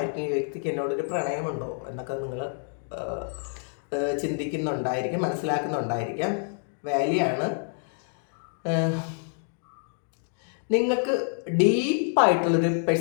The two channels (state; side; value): silent; right; 60 dB below the other